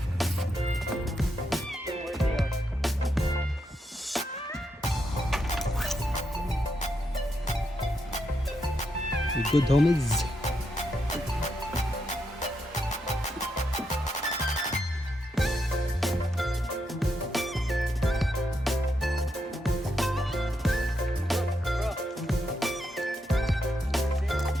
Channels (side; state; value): both; normal; correlation 0.81